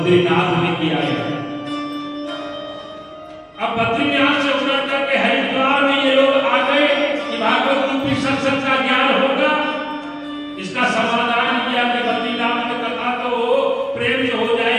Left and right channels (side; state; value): both; identical; correlation 1.00